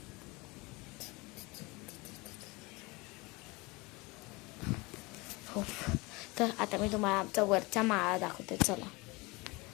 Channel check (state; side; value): quieter; right; 24.8 dB